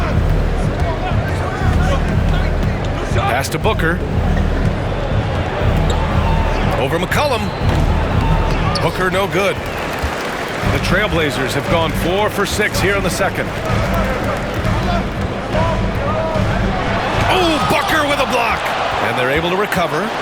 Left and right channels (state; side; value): identical; both; correlation 1.00